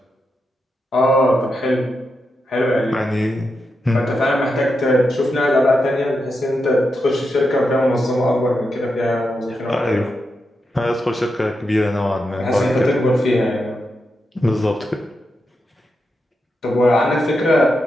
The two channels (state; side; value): normal; both; correlation 0.86